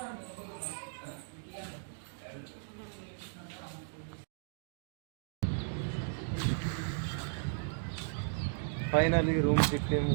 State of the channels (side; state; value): left; silent; digital silence